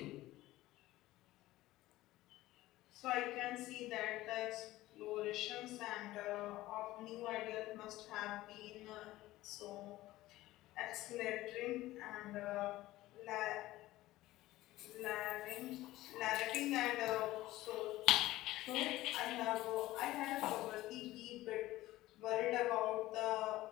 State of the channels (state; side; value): quieter; right; 16.8 dB